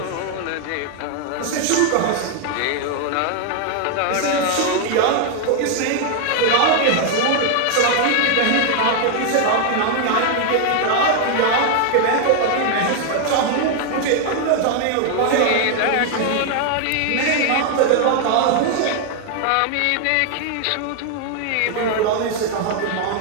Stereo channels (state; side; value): different; both; correlation 0.00